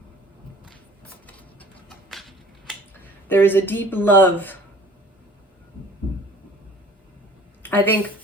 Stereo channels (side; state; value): both; normal; correlation 0.48